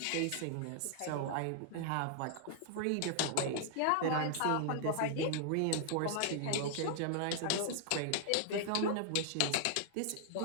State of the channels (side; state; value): both; different; correlation -0.01